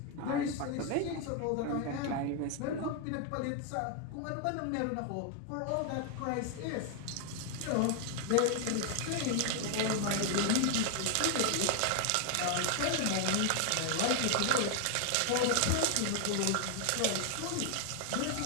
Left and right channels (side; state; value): both; different; correlation 0.00